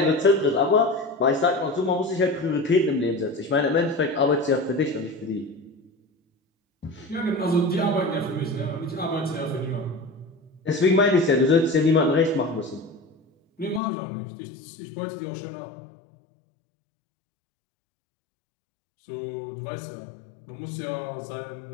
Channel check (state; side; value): drops out; right; at 13.8 s